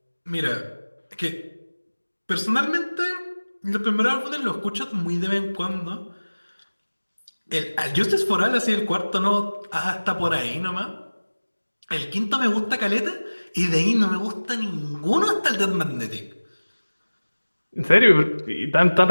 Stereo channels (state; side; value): inverted; both; correlation -1.00